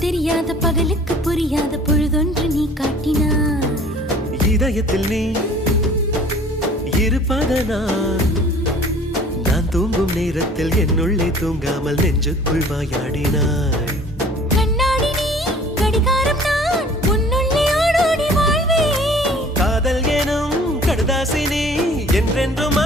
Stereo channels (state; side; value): normal; both; correlation 0.50